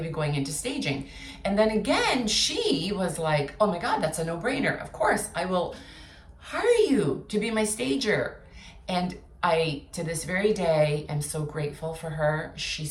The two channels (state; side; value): identical; both; correlation 1.00